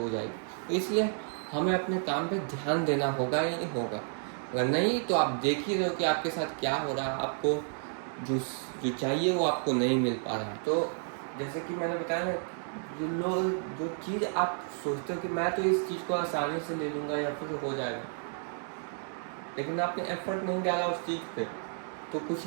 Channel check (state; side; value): silent; left; 57 dB below the other